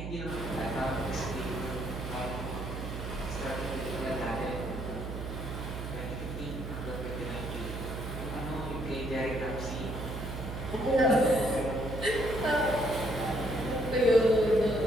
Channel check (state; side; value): noise; right; hum, 6 dB below the sound